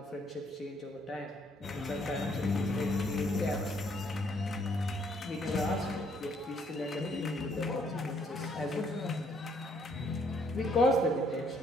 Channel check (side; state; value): both; normal; correlation 0.67